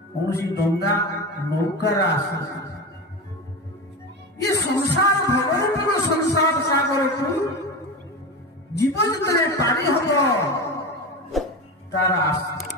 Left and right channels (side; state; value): both; normal; correlation 0.24